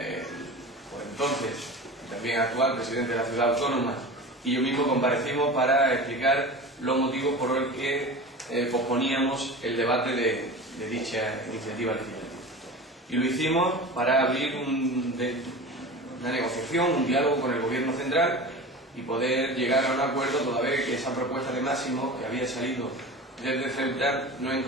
entonces también actual presidente de la ciudad autónoma y yo mismo comparecimos para explicar los motivos por los que posponíamos el debate de dicha iniciativa legislativa. Y lo hicimos para abrir una negociación, un diálogo con el Gobierno central y poder llegar a un acuerdo, toda vez que esa propuesta de máximo que había salido desde Ceuta no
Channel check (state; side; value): normal; both; correlation 0.32